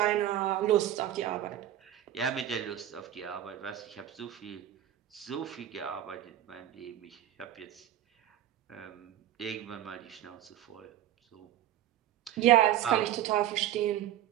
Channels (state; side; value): quieter; left; 12.0 dB